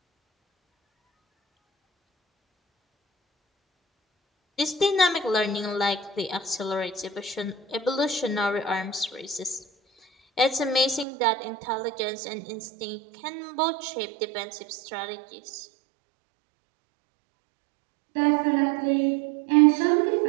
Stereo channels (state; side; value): drops out; left; at 11.1 s